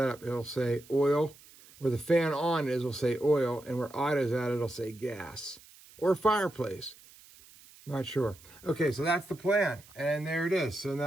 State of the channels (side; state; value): right; noise; hiss, 23 dB below the sound